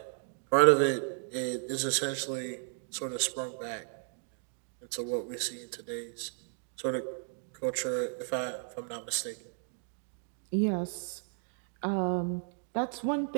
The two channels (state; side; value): silent; left; digital silence